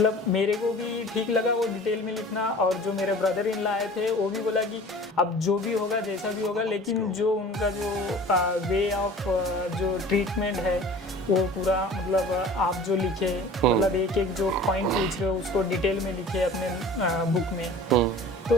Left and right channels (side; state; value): both; normal; correlation 0.43